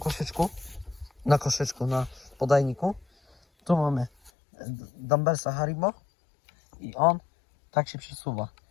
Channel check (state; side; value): drops out; right; at 4.3 s